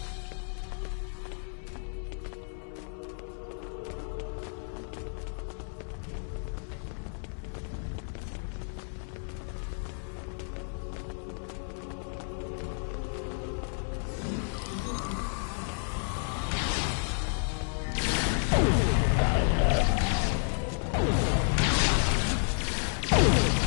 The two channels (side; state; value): right; silent; 57 dB below the other